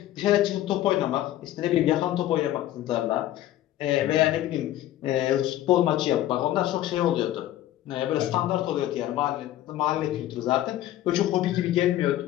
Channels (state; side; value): quieter; right; 13.6 dB